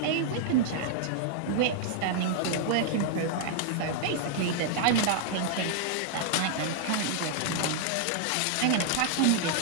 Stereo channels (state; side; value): different; both; correlation -0.01